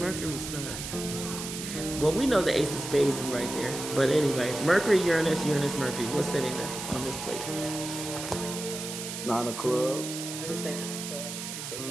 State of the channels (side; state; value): right; noise; hiss, 7 dB below the sound